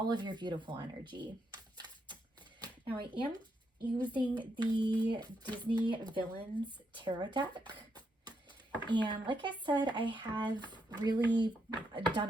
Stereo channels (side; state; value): both; normal; correlation 0.79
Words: of your beautiful energy. Now, I am using the Disney Villains Tarot deck. And like I said, I have really done